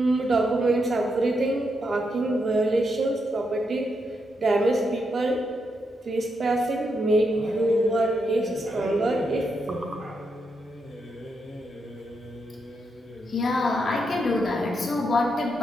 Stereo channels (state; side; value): normal; both; correlation 0.82